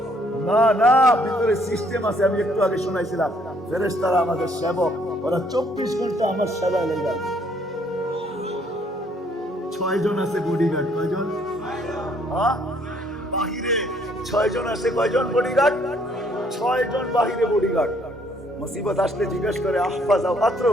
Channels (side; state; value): both; normal; correlation 0.65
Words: না না, ভিতরে সিস্টেম আছে। আমি একটু আগে শোনাইছিলাম, ফেরেশতারা আমাদের সেবক, ওরা 24 ঘন্টা আমার সেবায় লেগে আছে। 6 জন আছে বডিগার্ড। কয়জন? বাহিরে 6 জন আছে। কয়জন বডিগার্ড? 6 জন বাহিরে বডিগার্ড। মুসিবত আসলে জিজ্ঞেস করে আহফাজ আও